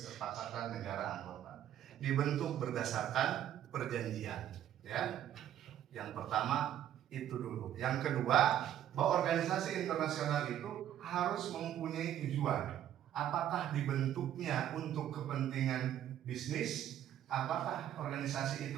negara anggota. Dibentuk berdasarkan perjanjian, ya. Yang pertama itu dulu. Yang kedua, bahwa organisasi internasional itu harus mempunyai tujuan. Apakah dibentuknya untuk kepentingan bisnis? Apakah organisasi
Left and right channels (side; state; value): left; quieter; 11.1 dB